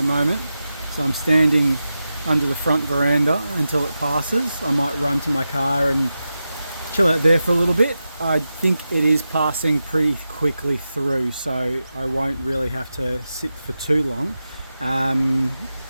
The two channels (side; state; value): both; inverted; correlation -0.92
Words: moment. So I'm standing under the front veranda until it passes. I might run to my car and chill out there for a little bit. I think it is passing pretty quickly through, so I won't really have to sit for too long.